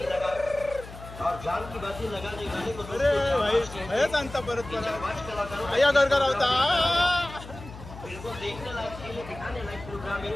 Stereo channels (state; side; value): noise; left; hum, 14 dB below the sound